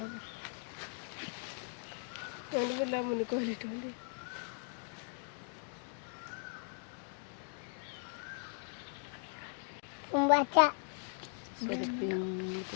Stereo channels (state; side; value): silent; right; 52 dB below the other